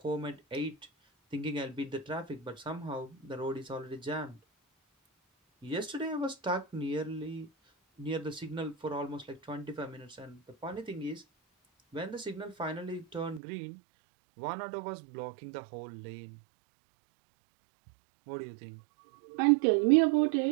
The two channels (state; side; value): drops out; left; at 13.4 s